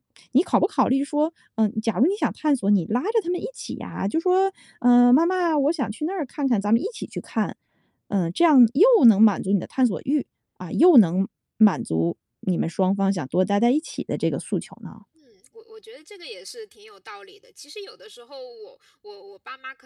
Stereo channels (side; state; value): both; identical; correlation 1.00